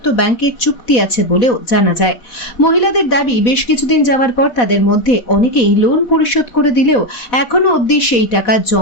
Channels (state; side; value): late; right; 4.1 ms